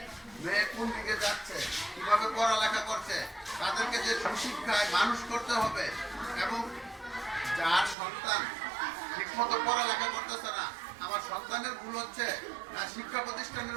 মেয়ে কোন দিকে যাচ্ছে, কিভাবে পড়ালেখা করছে, তাদেরকে যে সুশিক্ষায় মানুষ করতে হবে, এবং যার সন্তান ঠিকমতো পড়ালেখা করতেছে না, আমার সন্তানের ভুল হচ্ছে না শিক্ষা প্রতিষ্ঠানের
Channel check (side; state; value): left; drops out; at 8.0 s